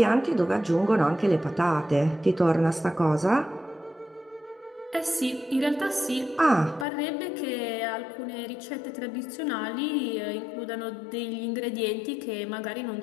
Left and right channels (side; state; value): right; drops out; at 6.9 s